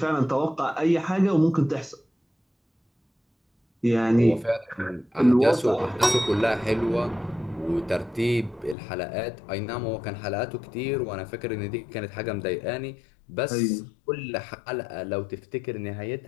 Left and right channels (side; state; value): right; drops out; at 8.8 s